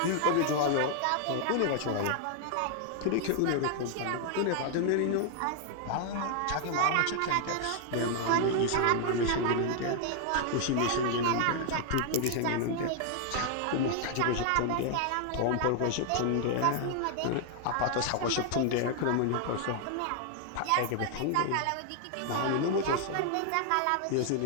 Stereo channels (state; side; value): different; both; correlation 0.00